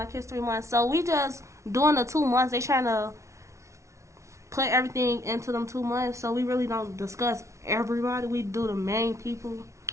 History Month. So we just doing the 2 months. They trying to put everything into them 2 months, so we really don't discuss everybody. We do the main people.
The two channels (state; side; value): late; left; 0.14 ms